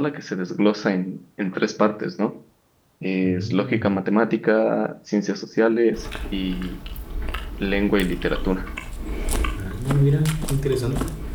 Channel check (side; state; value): both; identical; correlation 1.00